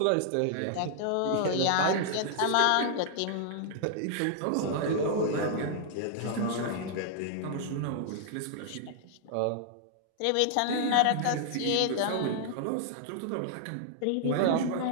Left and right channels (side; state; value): both; different; correlation -0.01